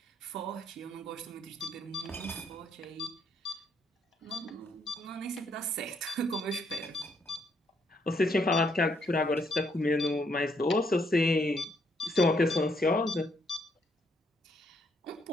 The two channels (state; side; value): normal; both; correlation 0.72